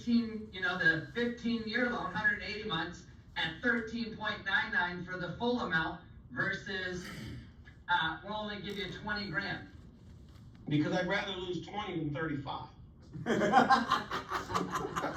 loan, 180 months, at 13.99 for the full amount, versus, we'll only give you 20 grand? Because I'd rather lose 20 than 35. Please,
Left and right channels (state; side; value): identical; both; correlation 1.00